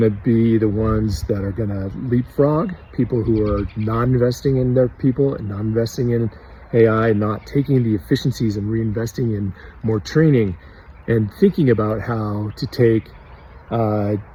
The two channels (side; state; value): both; identical; correlation 1.00